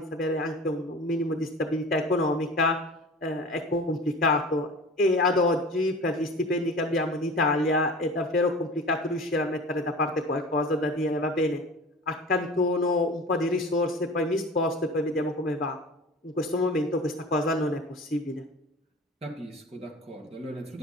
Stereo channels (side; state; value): both; normal; correlation 0.38